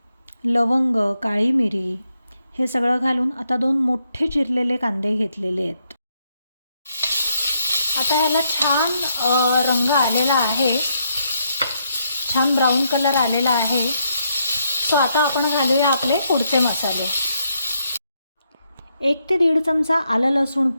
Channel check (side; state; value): both; inverted; correlation -0.78